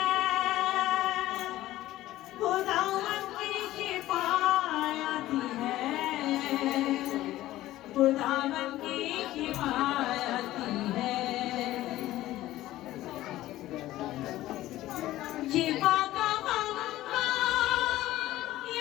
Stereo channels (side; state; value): right; quieter; 15.4 dB